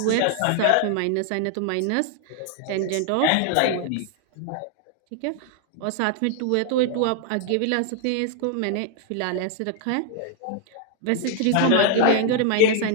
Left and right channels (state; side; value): different; both; correlation 0.00